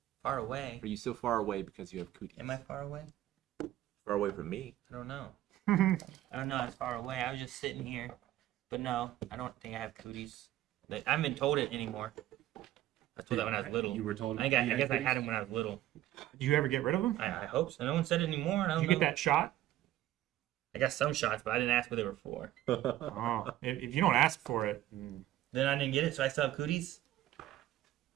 far away. Are you so far away because you have cooties? Am I far away? Far away from me. I don't know. I don't know. I'm far away. I was just sitting here, but no, I don't think I have cooties. I haven't been told it anymore. I was told that when I was little. You were told. I guess I had them when I was little. Do you ever get rid of them? I hope so. No one said it anymore. I Did don't you know. get that shot? I got some shots, but I didn't ask what they were for. Oh, if you don't ask for it, Then I didn't get it, so I still have cooties.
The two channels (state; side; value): quieter; left; 13.9 dB